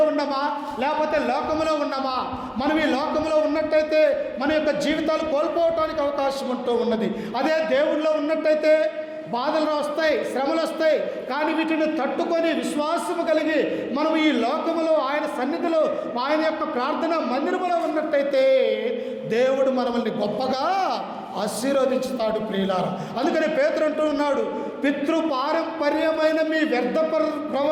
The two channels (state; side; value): identical; both; correlation 1.00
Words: ఉన్నామా లేకపోతే లోకంలో ఉన్నామా? మనం ఈ లోకంలో ఉన్నట్టయితే మన యొక్క జీవితాలు కోల్పోవటానికి అవకాశం ఉంటూ ఉన్నది. అదే దేవుడిలో ఉన్నట్టయితే బాధలు వస్తాయి, శ్రమలు వస్తాయి, కానీ వీటిని తట్టుకొని విశ్వాసము కలిగి మనం ఈ లోకములో ఆయన సన్నిధిలో ఆయన యొక్క ప్రార్థన మందిరములో ఉన్నట్టయితే దేవుడు మనల్ని గొప్పగా ఆశీర్వదించుతాడు ప్రియులారా. అందుకని పేతురు అంటూ ఉన్నాడు, పితృపారంపర్యమైన మీ వ్యర్థ